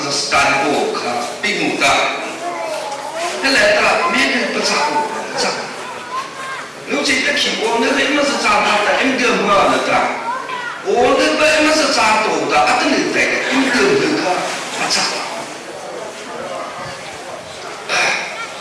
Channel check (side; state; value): both; identical; correlation 1.00